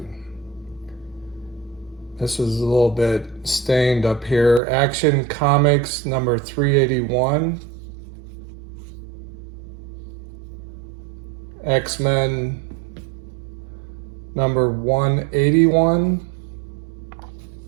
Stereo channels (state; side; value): drops out; left; at 4.6 s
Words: This is a little bit stained up here. Action Comics number 381. X-Men number 181.